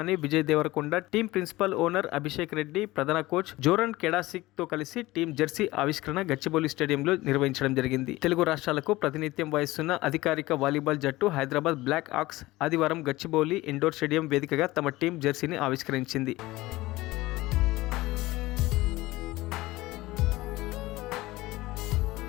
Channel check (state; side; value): quieter; right; 18.9 dB